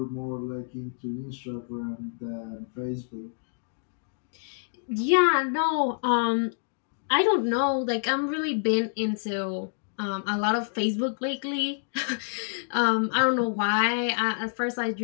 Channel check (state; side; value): silent; right; digital silence